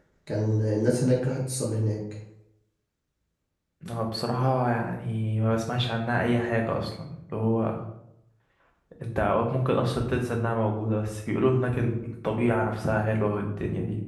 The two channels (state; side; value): identical; both; correlation 1.00